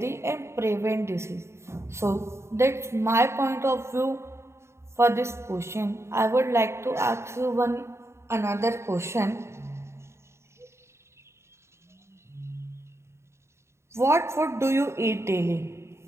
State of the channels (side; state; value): left; late; 0.13 ms